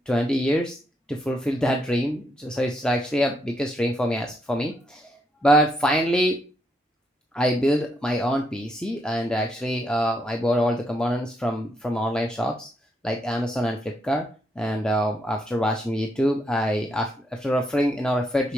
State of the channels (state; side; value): normal; both; correlation 0.76